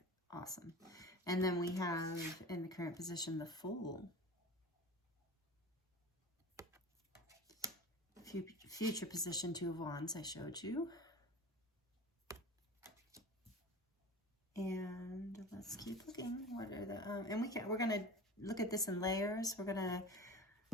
awesome. And then we have in the current position the Fool. Future position, Two of Wands I showed you. And let's keep looking. What are the and we're gonna look at this in layers. We're gonna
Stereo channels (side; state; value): both; normal; correlation 0.35